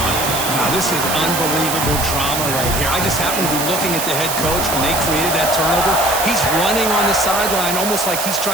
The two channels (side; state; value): right; noise; hiss, 3 dB below the sound